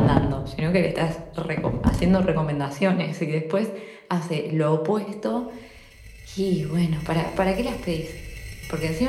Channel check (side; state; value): both; identical; correlation 1.00